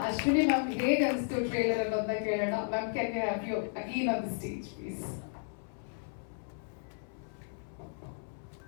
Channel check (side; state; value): right; silent; 55 dB below the other